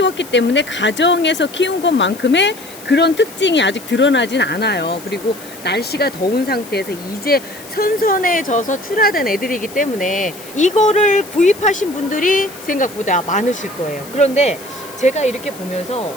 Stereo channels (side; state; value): left; noise; hiss, 18 dB below the sound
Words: 때문에 가정에서 키운 것만큼의 그런 특징이 아직 드러나진 않아요. 그리고 날씨가 더운 상태에서 이제 선선해져서 출하된 애들이기 때문에 이거를 구입하신 분들이 생각보다 많으실 거예요. 그런데 제가 이렇게